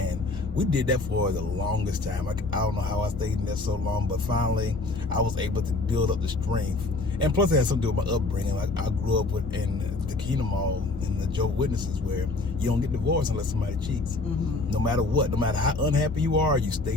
we did that for the longest time. I don't know how I stayed in there so long, but finally I was able to build up the strength. And plus it had something to do with my upbringing. Like, I grew up in the Kingdom Hall in the Jehovah's Witnesses, where you don't get divorced unless somebody cheats. No matter what, no matter how unhappy you are, you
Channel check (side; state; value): right; quieter; 3.2 dB